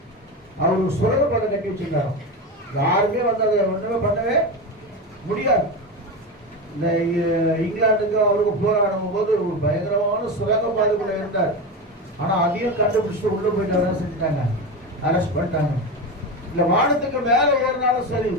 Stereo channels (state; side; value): normal; both; correlation 0.20